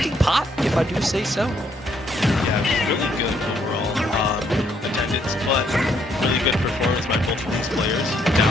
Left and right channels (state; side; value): normal; both; correlation 0.70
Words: pot, if I do say so. Yeah, really good overall attendance, but really good performance by both of these players.